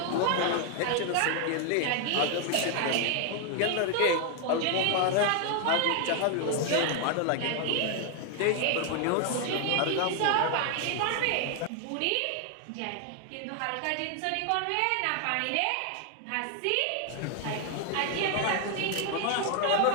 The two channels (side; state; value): both; different; correlation 0.00